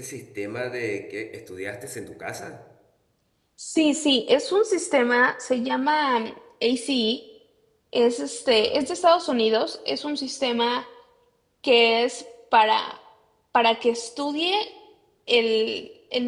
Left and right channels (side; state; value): both; identical; correlation 1.00